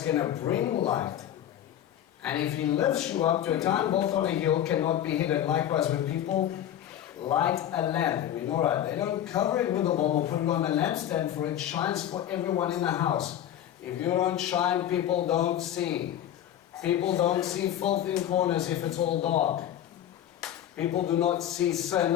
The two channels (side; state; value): right; quieter; 11.1 dB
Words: going to bring light. And if He lifts you up to a time both on a hill cannot be hidden. Likewise, when people light a lamp in menorah, they don't cover it with a bulb or put it on a lampstand, for it shines for everyone in the house. If you don't shine, people don't see. People don't see filth in corners if it's all dark. People do not see sin